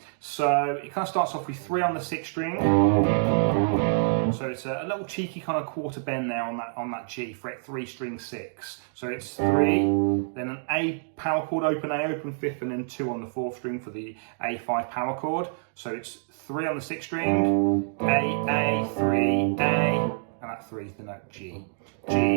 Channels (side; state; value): left; silent; digital silence